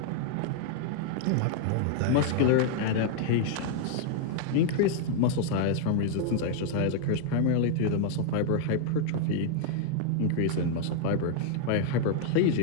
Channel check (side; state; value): both; different; correlation -0.01